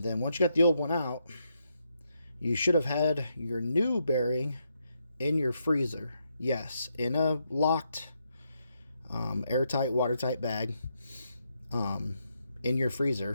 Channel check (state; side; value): inverted; both; correlation -0.80